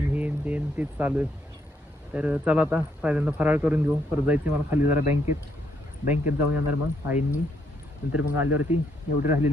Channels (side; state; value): both; normal; correlation 0.74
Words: हेन तेन तेच चालू आहे. तर चला आता पहिल्यांदा फराळ करून घेऊ. परत जायचं मला खाली जरा बँकेत जाऊन येणार मग आईंनी. नंतर मग आल्यावरती एवढी